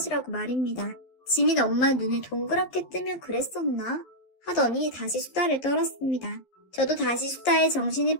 말입니다. 지민 엄마 눈을 동그랗게 뜨며 그랬었나? 하더니 다시 수다를 떨었습니다. 저도 다시 수다에 정신이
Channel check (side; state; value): right; late; 11 ms